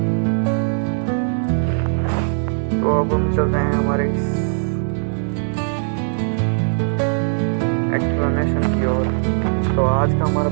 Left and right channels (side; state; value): left; silent; 58 dB below the other